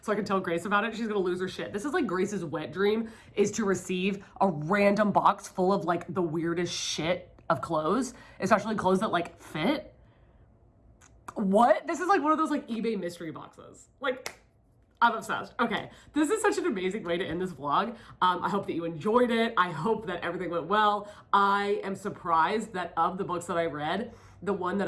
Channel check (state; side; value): identical; both; correlation 1.00